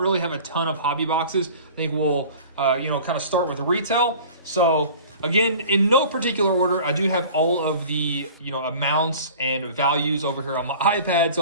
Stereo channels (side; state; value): both; inverted; correlation -0.43